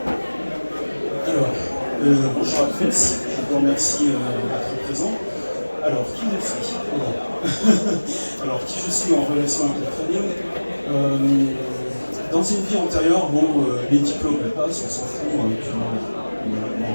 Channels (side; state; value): both; inverted; correlation -1.00